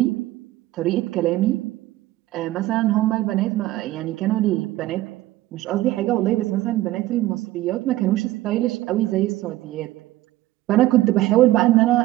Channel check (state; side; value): quieter; left; 16.2 dB